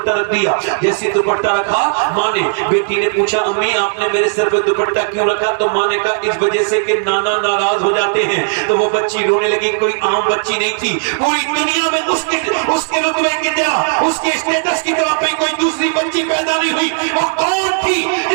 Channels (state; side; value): silent; left; digital silence